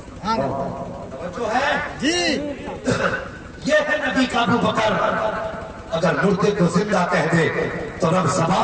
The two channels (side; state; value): both; identical; correlation 1.00